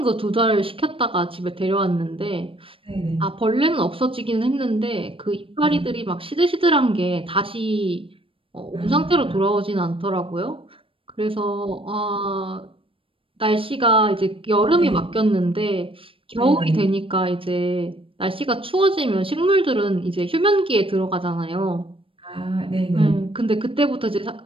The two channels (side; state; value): left; late; 0.26 ms